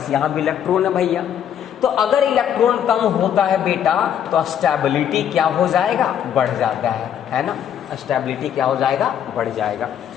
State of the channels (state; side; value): quieter; right; 9.4 dB